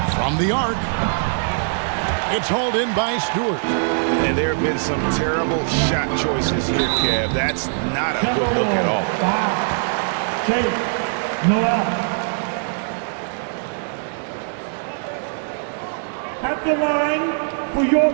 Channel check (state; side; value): silent; left; digital silence